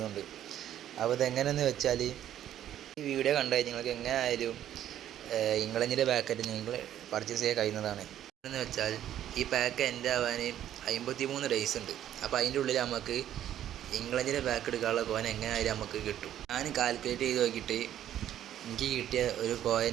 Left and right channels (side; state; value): left; quieter; 11.3 dB